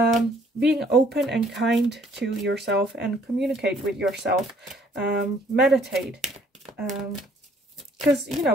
open and kind to yourself and communicate with yourself. Meditate. Because, you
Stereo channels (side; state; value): both; normal; correlation 0.62